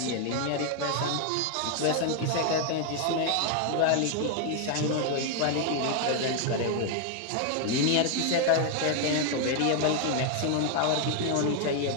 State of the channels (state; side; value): different; both; correlation 0.00